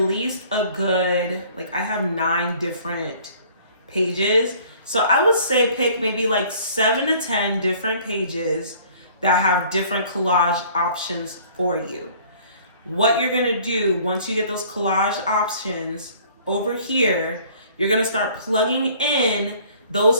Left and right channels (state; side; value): inverted; both; correlation -0.54